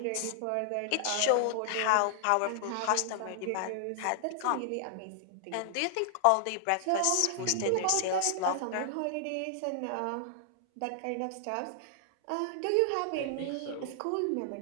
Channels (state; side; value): different; both; correlation -0.01